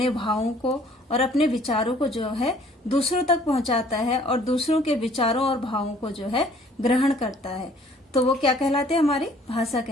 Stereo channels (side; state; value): both; normal; correlation 0.57